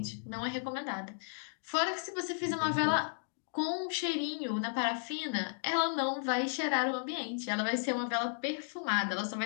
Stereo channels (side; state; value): right; silent; digital silence